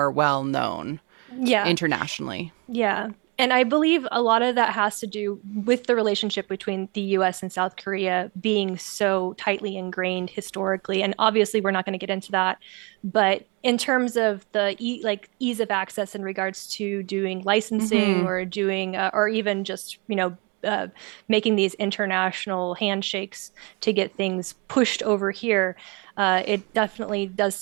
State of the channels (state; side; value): quieter; left; 29.7 dB